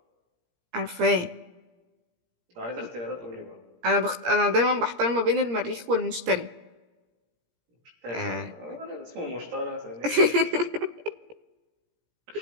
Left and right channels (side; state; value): left; late; 17 ms